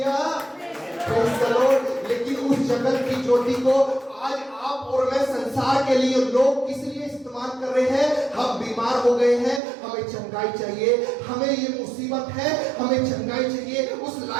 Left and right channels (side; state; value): left; drops out; at 9.6 s